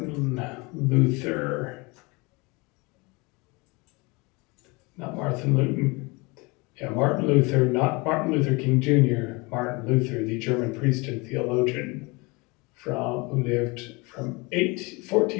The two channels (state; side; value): quieter; right; 26.4 dB